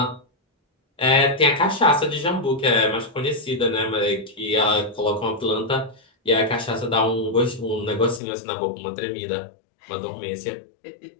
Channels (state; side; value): drops out; right; at 8.2 s